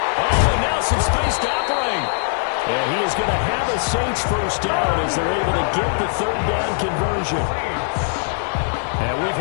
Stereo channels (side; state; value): right; silent; 65 dB below the other